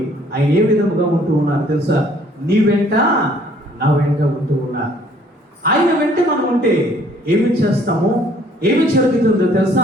ఆయన ఏ విధముగా ఉంటూ ఉన్నారు తెలుసా? నీ వెంట నా వెంట ఉంటూ ఉన్నారు. ఆయన వెంట మనం ఉంటే ఏమి చేస్తాము? ఏమి జరుగుతుందో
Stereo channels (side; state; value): both; normal; correlation 0.60